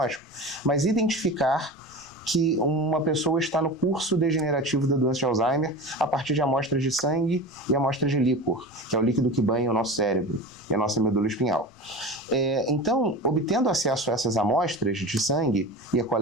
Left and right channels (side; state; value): left; noise; rumble, 29 dB below the sound